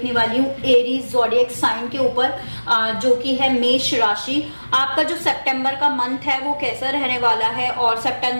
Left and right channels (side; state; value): both; inverted; correlation -1.00